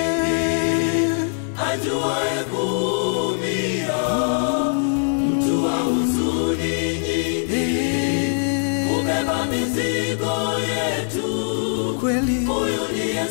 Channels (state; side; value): silent; right; digital silence